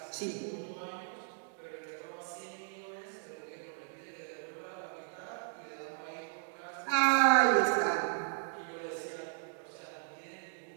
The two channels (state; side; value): silent; left; digital silence